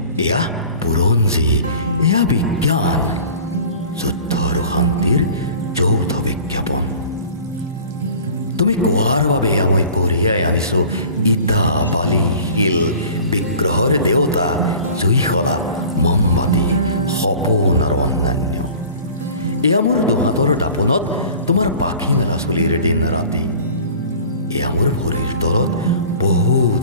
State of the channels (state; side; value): inverted; both; correlation -0.43